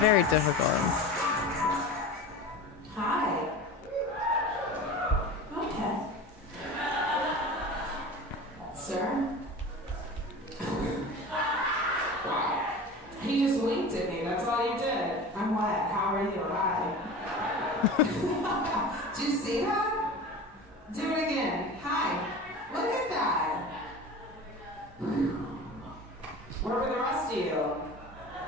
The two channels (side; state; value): both; normal; correlation 0.34